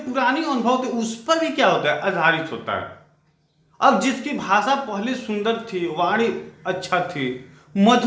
अनुभव थे उस पर भी क्या होता है, आधारित होता है। अब जिसकी भाषा पहले सुंदर थी, वाणी अच्छा थी,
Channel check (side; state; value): both; identical; correlation 1.00